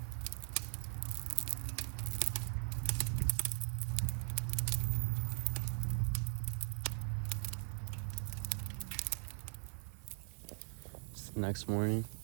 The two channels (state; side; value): silent; left; 51 dB below the other